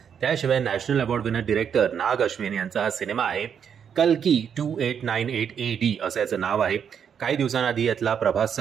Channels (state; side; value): quieter; left; 7.7 dB